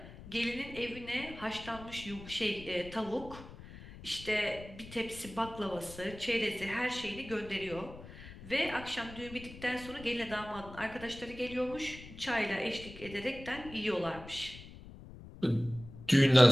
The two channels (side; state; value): left; noise; rumble, 15 dB below the sound